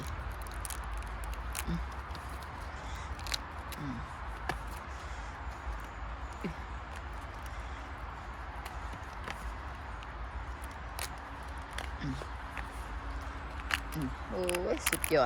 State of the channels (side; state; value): both; identical; correlation 1.00